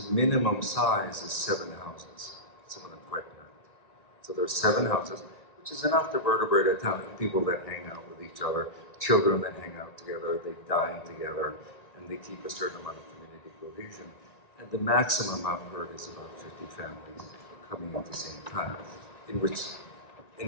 minimum size is 7 houses, some of them quite packed. So there's 7 houses, which is enough to vertebrate a town of people that hang out with each other, children that hang out together, they dine together, and they keep a certain amount of community cohesion. And the maximum I've heard is about 50 families coming at the same time,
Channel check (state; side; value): late; right; 1.9 ms